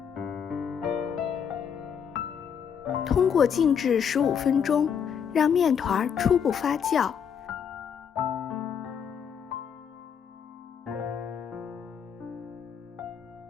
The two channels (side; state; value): right; quieter; 7.5 dB